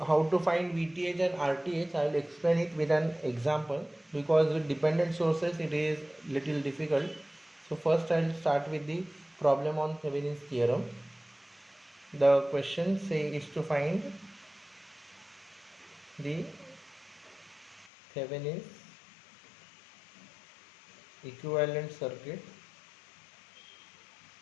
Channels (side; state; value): right; drops out; at 17.9 s